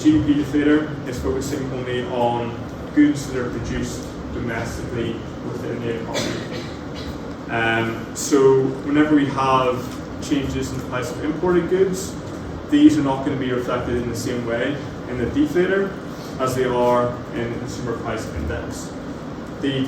deflator is focusing only on goods that are produced domestically within the economy. So whenever we have changes in the price of imported goods, these are not going to be reflected in the same way in the deflator as they are in the consumer price index. The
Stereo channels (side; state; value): both; identical; correlation 1.00